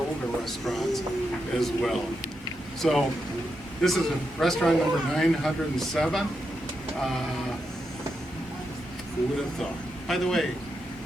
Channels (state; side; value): normal; both; correlation 0.85